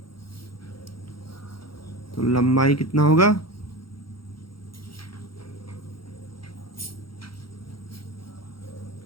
तो लंबाई कितना होगा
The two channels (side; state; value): right; late; 0.73 ms